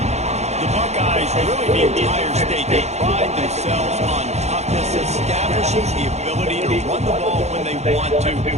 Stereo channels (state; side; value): late; left; 0.32 ms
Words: The Buckeyes, really the entire state, they pride themselves on toughness. Establishing the ability to run the ball when they want to